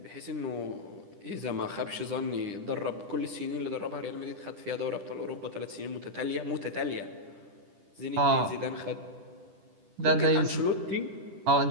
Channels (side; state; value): left; late; 10 ms